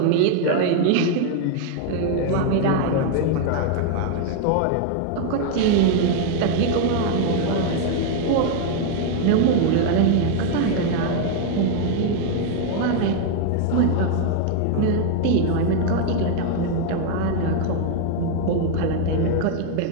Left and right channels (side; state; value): both; different; correlation 0.00